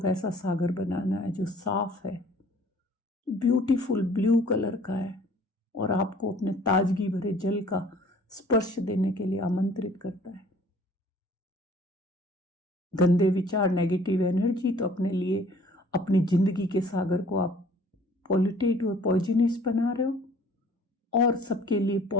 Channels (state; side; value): normal; both; correlation 0.53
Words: सागर बनाना है जो साफ है, ब्यूटीफुल ब्लू कलर का है और आपको अपने ताजगी भरे जल का स्पर्श देने के लिए आमंत्रित करता है। गंदे विचार, नेगेटिव एनर्जी तो अपने लिए, अपनी जिंदगी के सागर को आप पॉल्यूटेड और पॉइजनस बना रहे हो, और सबके लिए